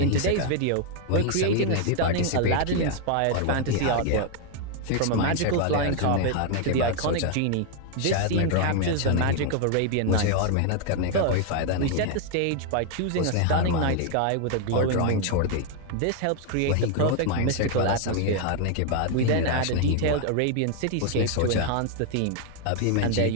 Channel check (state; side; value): different; both; correlation 0.00